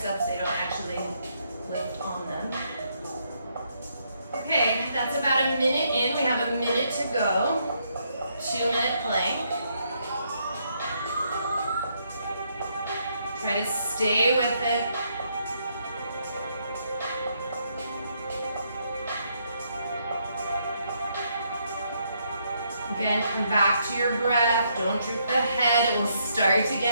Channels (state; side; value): inverted; both; correlation -0.74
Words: They don't actually lift on them. Okay, that's about a minute in. We have a minute to go. 2-minute plank. Try to stay with it. Again, come back to your breath. Don't droop the head. It will start to